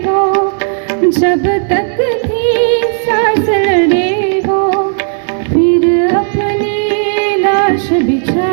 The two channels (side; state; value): left; silent; digital silence